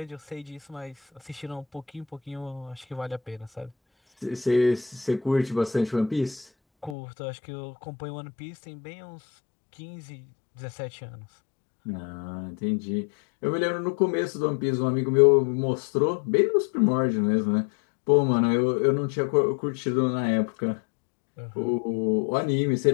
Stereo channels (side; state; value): right; drops out; at 7.0 s